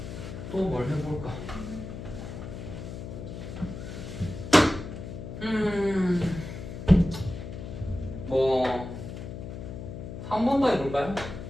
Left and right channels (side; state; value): left; noise; hum, 9 dB below the sound